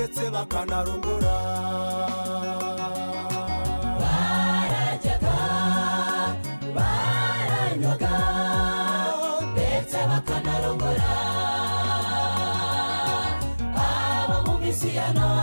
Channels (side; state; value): both; inverted; correlation -1.00